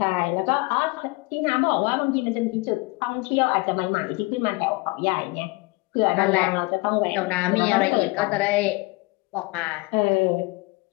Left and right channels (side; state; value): right; quieter; 24.3 dB